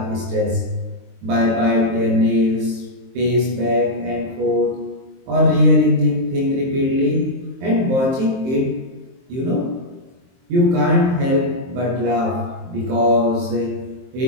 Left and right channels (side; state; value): left; late; 23 ms